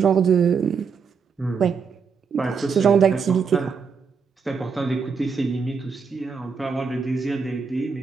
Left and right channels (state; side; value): quieter; left; 5.7 dB